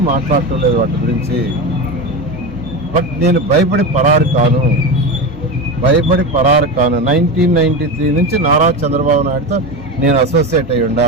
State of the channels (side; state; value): both; normal; correlation 0.21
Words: మాట్లాడటలేదు వాటి గురించి. బట్ నేను భయపడి పరారు కాను. 1993 నుంచి నారా చంద్రబాబు నాయుడుతో నేను అసోసియేట్ అయ్యి ఉండా.